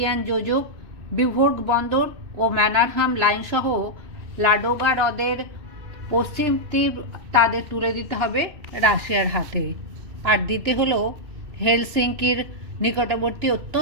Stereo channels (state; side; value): late; left; 2.6 ms